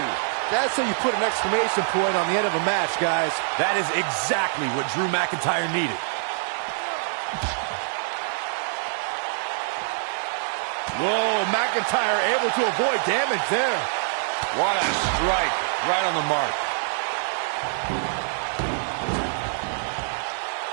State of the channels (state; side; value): silent; left; 57 dB below the other